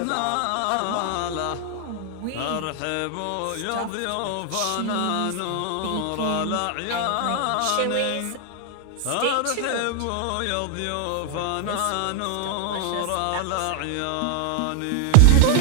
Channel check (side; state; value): both; different; correlation 0.00